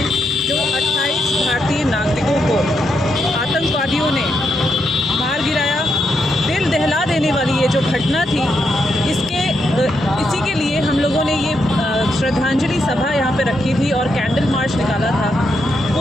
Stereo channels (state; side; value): normal; both; correlation 0.81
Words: जो 28 भारतीय नागरिकों को आतंकवादियों ने मार गिराया, दिल दहला देने वाली ये जो घटना थी, इसी के लिए हम लोगों ने ये श्रद्धांजलि सभा यहाँ पे रखी थी और कैंडल मार्च निकाला था।